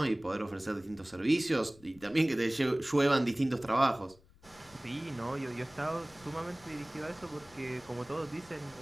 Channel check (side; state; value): left; noise; rumble, 26 dB below the sound